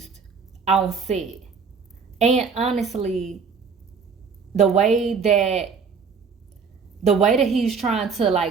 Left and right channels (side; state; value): left; quieter; 5.5 dB